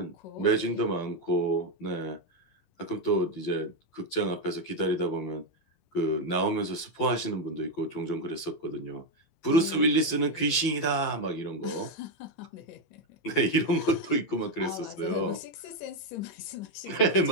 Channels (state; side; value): late; right; 12 ms